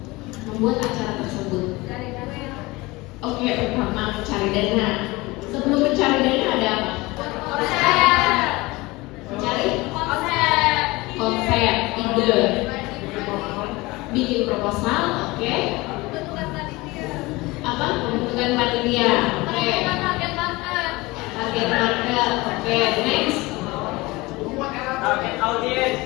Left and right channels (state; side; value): quieter; right; 22.0 dB